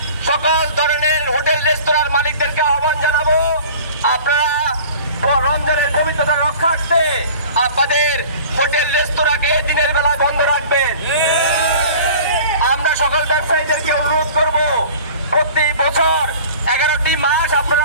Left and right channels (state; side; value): inverted; both; correlation -0.43